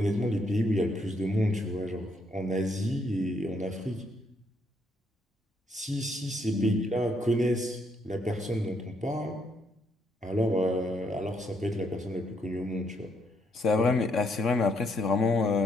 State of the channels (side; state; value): both; normal; correlation 0.73